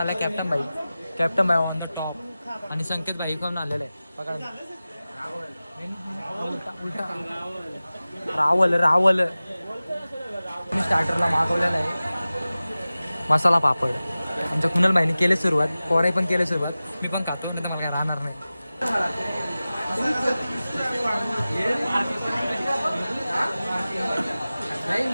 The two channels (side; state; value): both; inverted; correlation -0.97